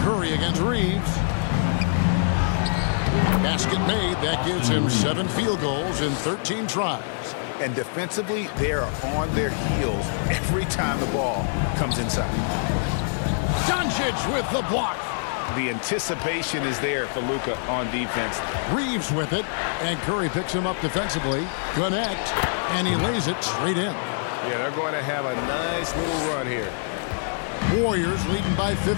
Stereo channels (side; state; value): right; silent; digital silence